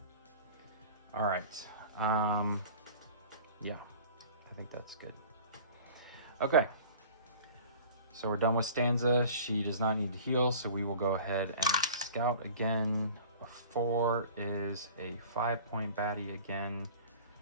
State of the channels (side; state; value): both; inverted; correlation -0.42